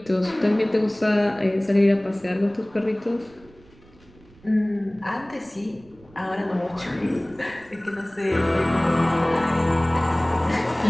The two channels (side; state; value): right; noise; rumble, 26 dB below the sound